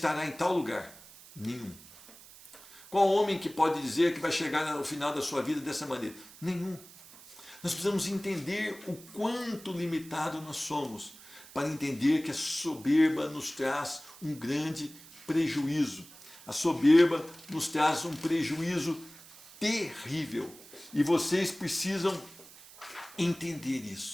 em tal lugar? Nenhum. Qual homem que pode dizer que vai chegar ao final da sua vida dessa maneira? Nenhum. Nós precisamos entender o quanto limitado nós somos para entender que a soberba nos traz um grande prejuízo. A soberba nos traz um prejuízo terrível. E vocês precisam entender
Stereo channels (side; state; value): right; noise; hiss, 20 dB below the sound